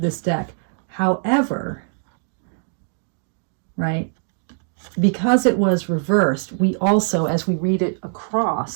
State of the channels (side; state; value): left; silent; 64 dB below the other